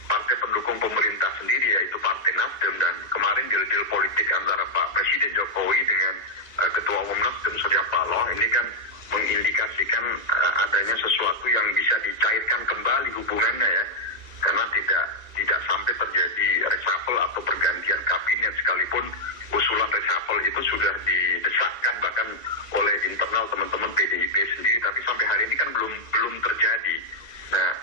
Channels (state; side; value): late; left; 1.9 ms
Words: partai pendukung pemerintah sendiri, yaitu Partai Nasdem. Dan kemarin deal-deal politik antara Pak Presiden Jokowi dengan Ketua Umum Nasdem Surya Paloh ini kan mengindikasikan adanya sesuatu yang bisa dicairkan kembali hubungannya ya, karena tidak sampai terjadi reshuffle atau pergantian kabinet, sekalipun usulan reshuffle itu sudah didesakkan bahkan oleh internal teman-teman PDIP sendiri, tapi sampai hari ini kan belum terjadi. Nah